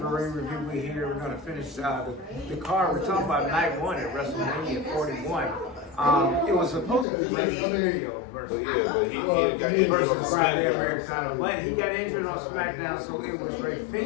ring review. We're here. We're going to finish the card. We're talking about night one at Wrestlemania 41. It was supposed to be Rey Mysterio versus he got injured on versus Friday SmackDown. Americana, but he got injured on SmackDown, so it was Rey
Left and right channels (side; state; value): right; drops out; at 7.1 s